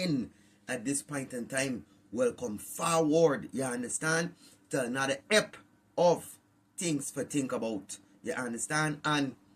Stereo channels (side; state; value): both; identical; correlation 1.00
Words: At this point in time, welcome forward, you understand, to another ep of Things for Think About, you understand. And